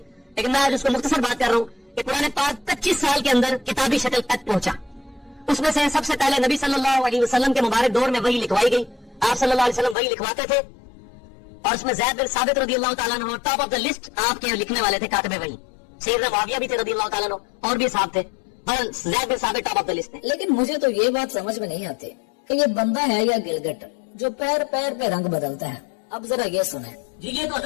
لیکن میں آج اس کو مختصر بات کر رہا ہوں کہ قرآن پاک 25 سال کے اندر کتابی شکل تک پہنچا. اس میں سے سب سے پہلے نبی صلی اللہ علیہ وسلم کے مبارک دور میں وحی لکھوائی گئی. آپ صلی اللہ علیہ وسلم وحی لکھواتے تھے, اور اس میں زید بن ثابت رضی اللہ تعالیٰ عنہ ٹاپ آف دا لسٹ آپ کے لکھنے والے تھے, کاتب وحی. سیدنا معاویہ بھی تھے رضی اللہ تعالیٰ عنہ, اور بھی صاحب تھے, پر زید بن ثابت ٹاپ آف دا لسٹ تھے. لیکن مجھے تو یہ بات سمجھ میں نہیں آتی کہ یہ بندہ ہے یا گلگٹ جو پیر پیر پہ رنگ بدلتا ہے. اب ذرا یہ سنیں. جی یہ تو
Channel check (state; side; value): drops out; right; at 10.0 s